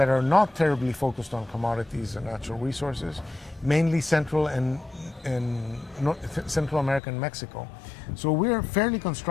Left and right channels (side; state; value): right; drops out; at 7.0 s